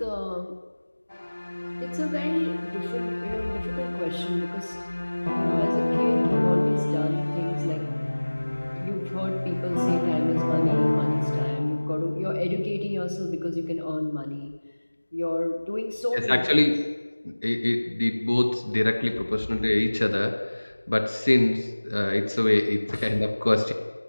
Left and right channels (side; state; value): both; inverted; correlation -1.00